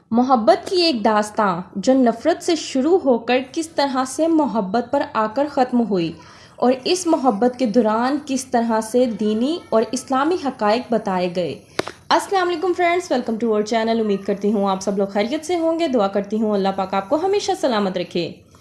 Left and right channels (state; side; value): identical; both; correlation 1.00